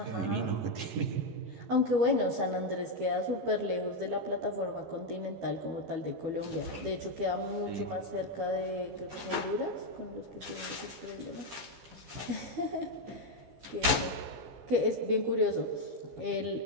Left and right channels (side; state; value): left; late; 12 ms